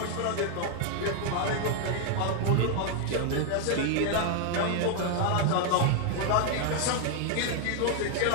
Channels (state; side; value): different; both; correlation 0.00